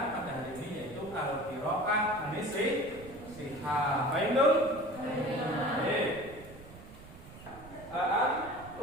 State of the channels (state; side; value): noise; right; rumble, 18 dB below the sound